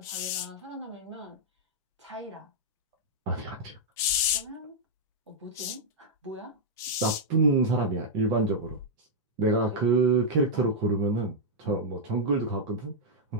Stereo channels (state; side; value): normal; both; correlation -0.05